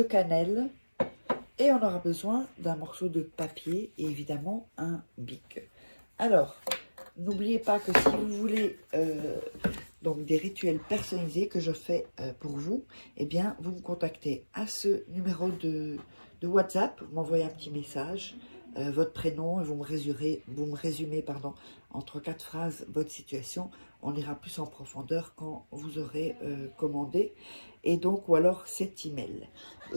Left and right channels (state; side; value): inverted; both; correlation -1.00